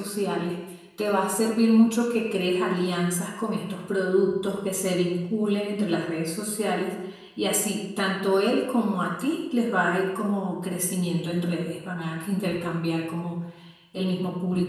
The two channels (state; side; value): identical; both; correlation 1.00